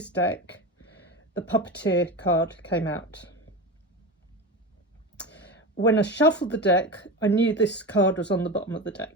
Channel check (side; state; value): both; normal; correlation 0.23